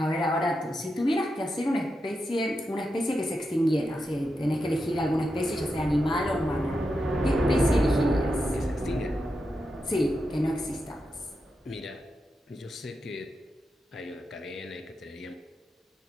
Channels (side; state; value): both; normal; correlation 0.87